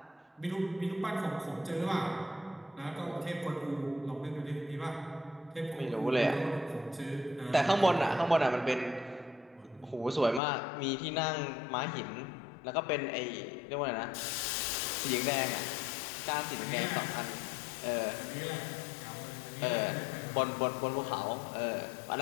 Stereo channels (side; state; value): right; drops out; at 10.4 s